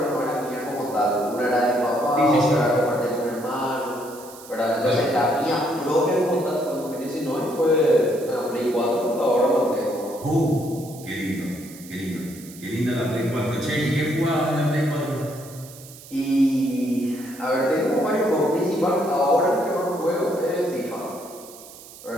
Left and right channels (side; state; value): right; noise; hiss, 18 dB below the sound